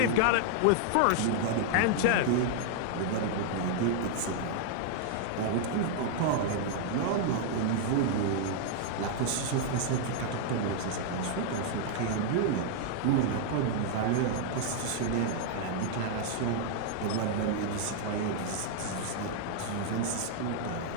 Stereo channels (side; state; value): both; different; correlation -0.01